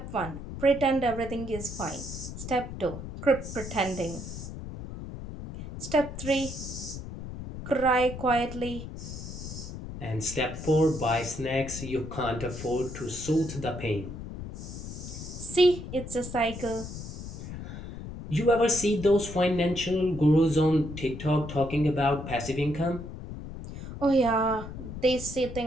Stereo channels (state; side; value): noise; left; rumble, 9 dB below the sound